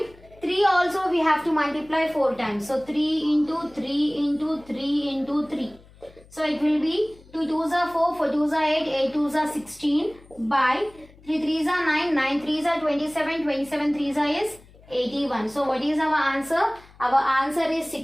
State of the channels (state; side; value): noise; left; hum, 25 dB below the sound